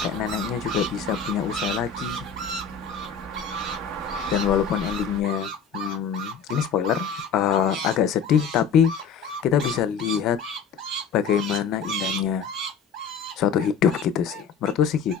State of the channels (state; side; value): quieter; right; 6.3 dB